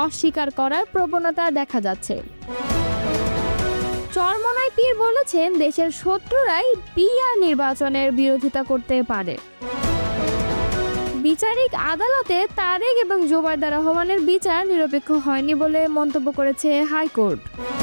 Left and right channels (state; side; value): inverted; both; correlation -1.00